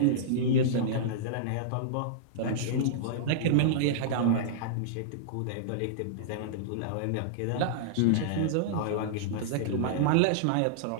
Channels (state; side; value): different; both; correlation -0.02